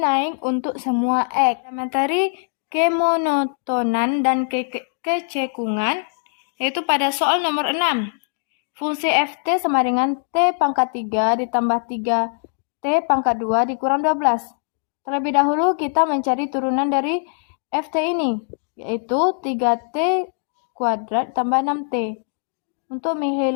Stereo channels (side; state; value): right; silent; digital silence